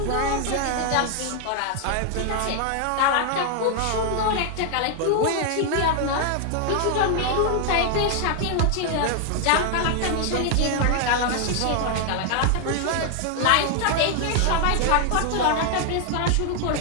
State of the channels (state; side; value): different; both; correlation 0.00